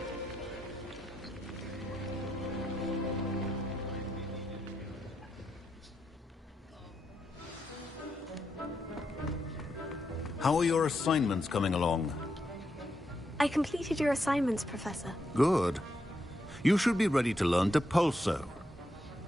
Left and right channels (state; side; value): normal; both; correlation 0.82